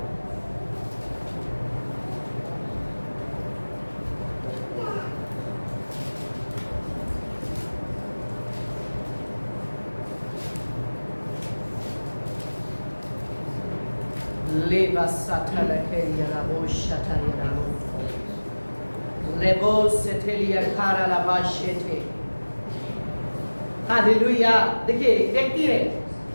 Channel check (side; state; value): both; inverted; correlation -1.00